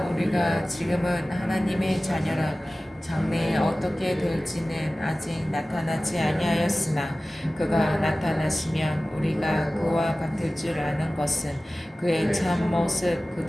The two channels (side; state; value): both; normal; correlation 0.97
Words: 우리가 지금은 하나님의 자녀라. 장래에 어떻게 될지는 아직 나타나지 아니하였으나 그가 나타나시면 우리가 그와 같을 줄 아는 것은 그의 참 모습